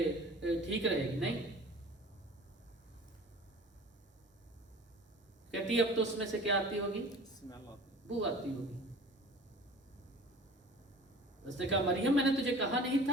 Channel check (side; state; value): both; normal; correlation 0.42